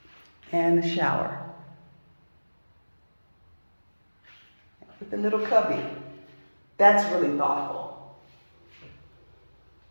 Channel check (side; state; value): both; inverted; correlation -1.00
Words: And the shower. With the little cubby. That's really thoughtful.